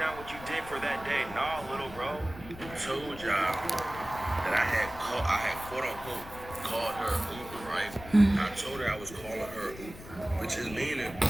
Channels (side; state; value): left; noise; rumble, 15 dB below the sound